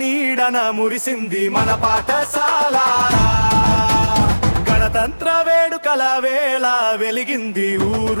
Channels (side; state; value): both; inverted; correlation -1.00